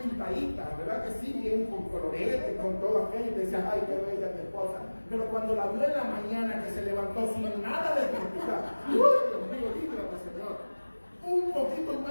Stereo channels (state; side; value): inverted; both; correlation -1.00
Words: pintadita, ¿verdad que sí? Bien con colorete, con todo aquello, y te decías, ay, qué bella mi esposa. Pero cuando la vio en la mañana que se levantó sin nada de pintura, ¡uy, Dios mío, líbrame, Señor! Un poquito